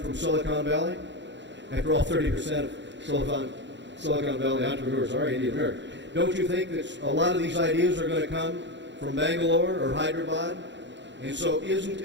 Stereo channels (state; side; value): late; left; 0.52 ms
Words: Silicon Valley? After all, 30% of Silicon Valley entrepreneurs are Indian American. Don't you think that a lot of these ideas are going to come from Bangalore or Hyderabad? And so isn't